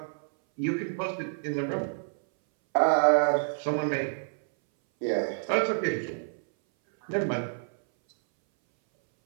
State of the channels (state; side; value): silent; left; 59 dB below the other